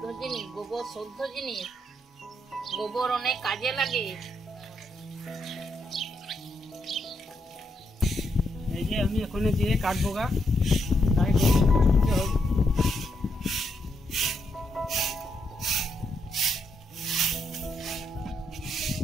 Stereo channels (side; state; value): both; normal; correlation 0.79